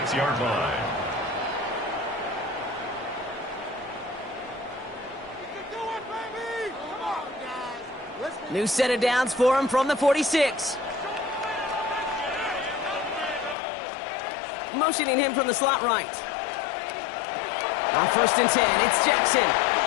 line. New set of downs for him from the 46. Motioning him from the slot right. On first and 10, it's Jackson.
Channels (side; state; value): right; drops out; at 13.6 s